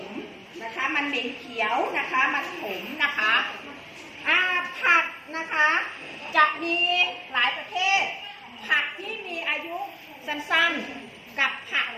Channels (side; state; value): both; identical; correlation 1.00